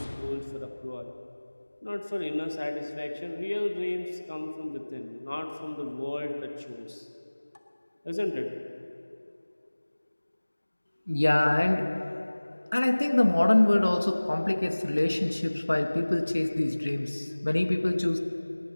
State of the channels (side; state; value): both; inverted; correlation -1.00